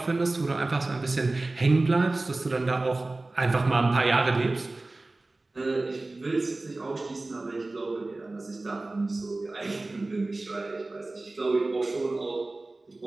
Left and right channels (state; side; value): quieter; left; 3.0 dB